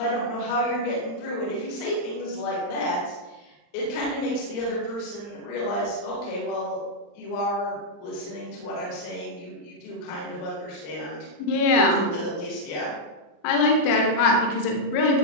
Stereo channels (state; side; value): late; right; 39 ms